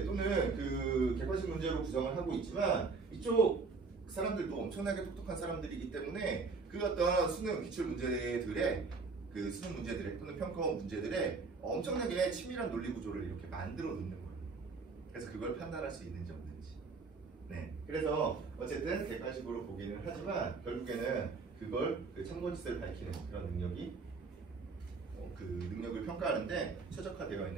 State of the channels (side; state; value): left; quieter; 4.4 dB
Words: 또는 그 객관식 문제로 구성을 하고 있지만 이쪽 사람들도 엄청나게 똑똑한 사람들이기 때문에 그 어떤 수능 기출 문제들의 그 수능 문제들의 또는 평가원 문제들의 엄청나게 치밀한 논리 구조를 이렇게 만들어 놓는 거예요. 그래서 그걸 판단할 수 있는지 없는지. 네, 그래서 어쨌든 객관식으로 보기는 하지만 결국에는 그걸 그 참고짓을 밝히는 그런 능력이 그 능력을 평가하는데 최적화되어